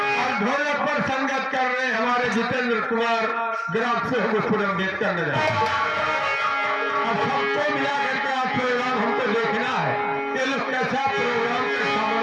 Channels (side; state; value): both; identical; correlation 1.00